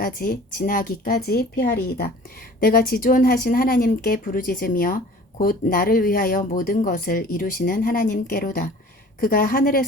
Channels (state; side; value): normal; both; correlation 0.46